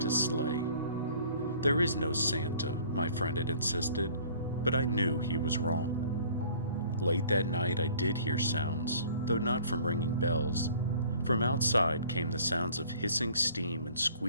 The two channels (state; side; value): inverted; both; correlation -0.52